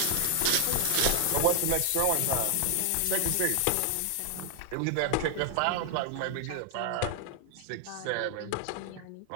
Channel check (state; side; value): different; both; correlation 0.00